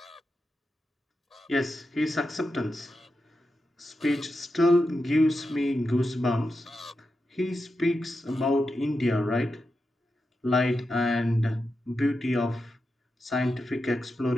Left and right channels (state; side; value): normal; both; correlation 0.89